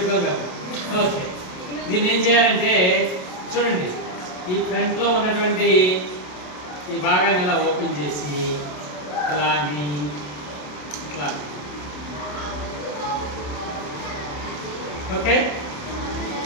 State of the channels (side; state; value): right; late; 27 ms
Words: కదా. ఓకే, దీన్ని ఏం చేయాలంటే చూడండి, ఈ ఫ్రంట్లో ఉన్నటువంటి ఈ భాగాన్ని ఇలా ఓపెన్ చేసి ఇలా ఇట్లా ఓకే